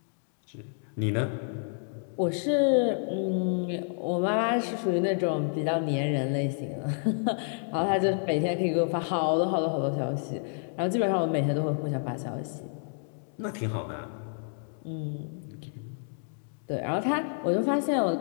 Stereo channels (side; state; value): right; silent; 58 dB below the other